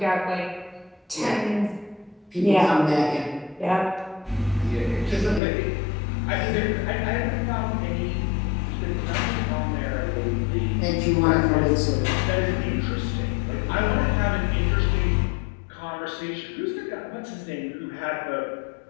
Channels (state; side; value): drops out; right; at 5.4 s